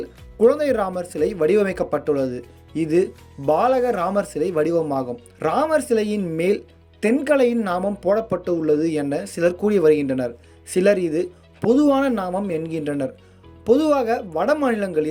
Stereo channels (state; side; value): identical; both; correlation 1.00